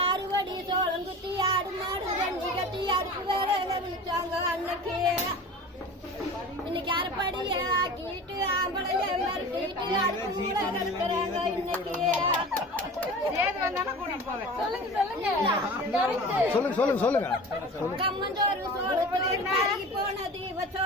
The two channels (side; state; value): both; normal; correlation 0.36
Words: அறுவடி சோளம் குத்தி ஆடு மாடு ரெண்டு கட்டி அடுப்பு வேற விழிச்சாங்க அன்னைக்கு. இன்னைக்கு அரைப்படிய ஆக்கிட்டு ஆம்பளைய மிரட்டிட்டு அடுப்பு மூட கலக்குறாங்க இன்னைக்கு. கம்மஞ்சோறு சோளத்தோறு கருகி போனது